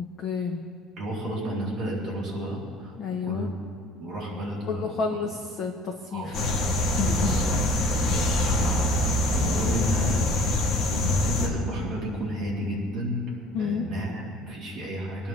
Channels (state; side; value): normal; both; correlation 0.49